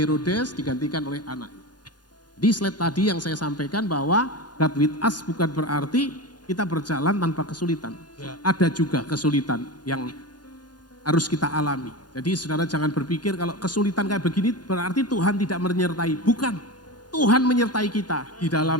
digantikan oleh anaknya. Di slide tadi yang saya sampaikan bahwa God with us bukan berarti kita berjalan tanpa kesulitan. Ya. Ada juga kesulitan yang harus kita alami. Jadi saudara jangan berpikir kalau kesulitan kayak begini berarti Tuhan tidak menyertai. Bukan, Tuhan menyertai kita di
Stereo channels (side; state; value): right; late; 0.69 ms